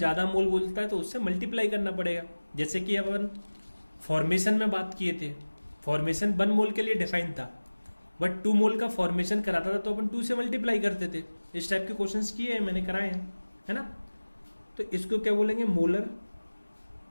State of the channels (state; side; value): inverted; both; correlation -1.00